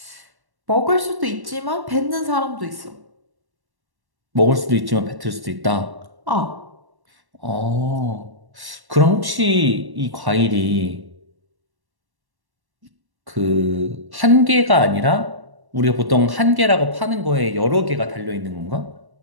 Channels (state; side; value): late; left; 1.1 ms